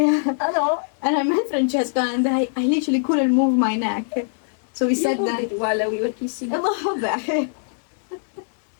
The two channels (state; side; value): silent; right; 64 dB below the other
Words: Hello. And I met Francesca, and I literally couldn't move my neck. So we You sat moved there. it while we were kissing. Vabbè.